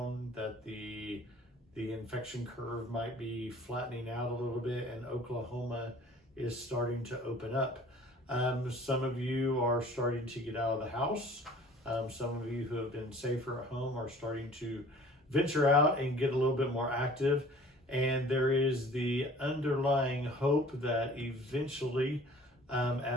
that the infection curve might be flattening out a little bit, and Oklahoma is starting to open up. Some of you are starting to get out of the house. Some of you who have been safer at home are starting to venture out and get a little bit more active. And there is the underlying hope that eventually,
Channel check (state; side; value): normal; both; correlation 0.49